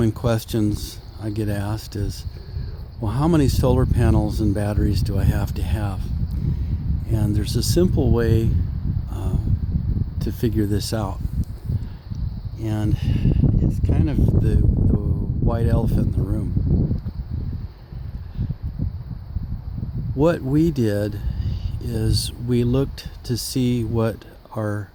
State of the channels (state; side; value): identical; both; correlation 1.00